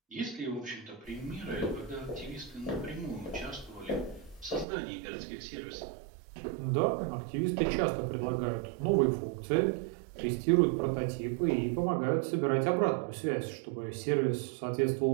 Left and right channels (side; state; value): left; drops out; at 4.7 s